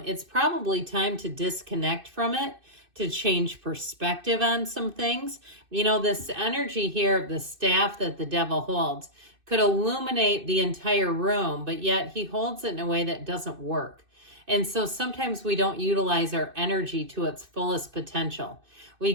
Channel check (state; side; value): late; left; 2.6 ms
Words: probably time to disconnect from it, to change perspective on some things. You know, this energy here of the staff that the devil holds could illuminate the entire room, but yet he holds it in a way that doesn't work. And so sometimes we don't utilize our energy to its fullest potential. We